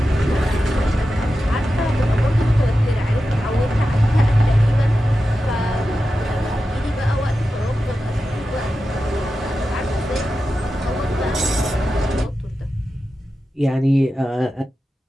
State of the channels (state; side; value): normal; both; correlation 0.92